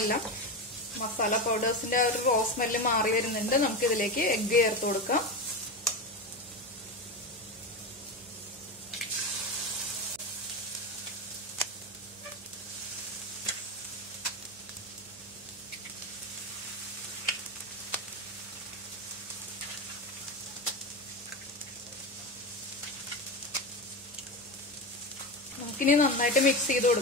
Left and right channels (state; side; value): noise; right; hum, 24 dB below the sound